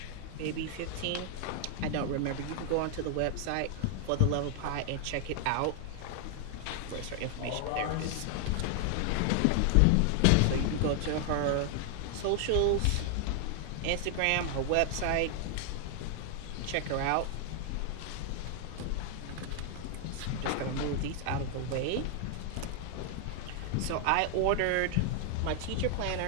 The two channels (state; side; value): different; both; correlation 0.00